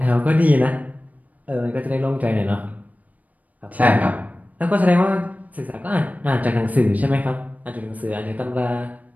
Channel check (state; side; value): late; left; 0.074 ms